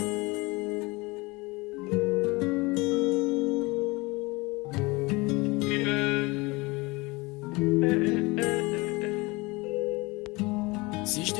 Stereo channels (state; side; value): quieter; right; 24.4 dB